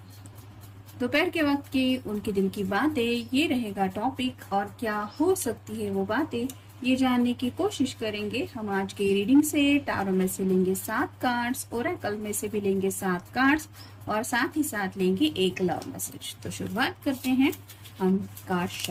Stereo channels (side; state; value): both; identical; correlation 1.00